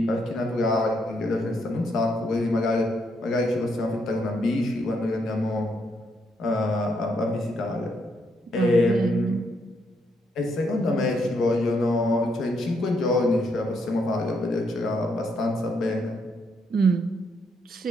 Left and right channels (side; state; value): both; normal; correlation 0.76